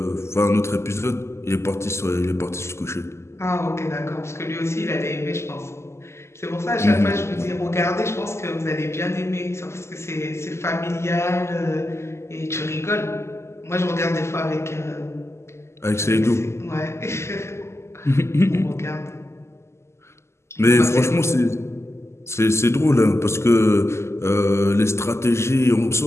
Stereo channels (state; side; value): late; right; 0.13 ms